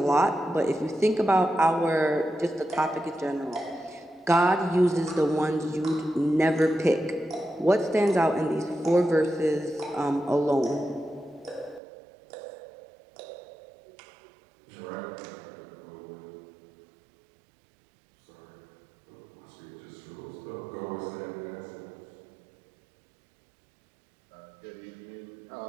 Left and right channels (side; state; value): left; drops out; at 11.8 s